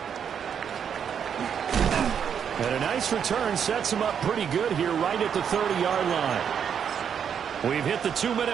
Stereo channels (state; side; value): quieter; left; 7.8 dB